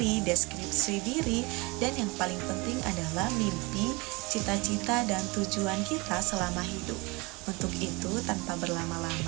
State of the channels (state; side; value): quieter; left; 26.0 dB